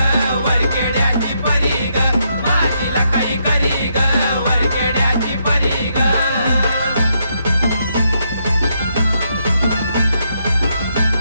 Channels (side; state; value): both; inverted; correlation -0.77